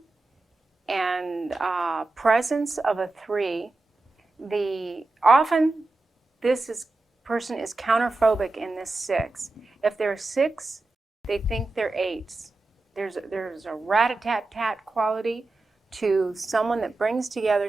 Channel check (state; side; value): quieter; left; 3.2 dB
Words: and presence of a 3. Often this person is counterphobic in this 6. If they're 6, they think they're 8s. There's a rat-a-tat-tat quality to someone that brings together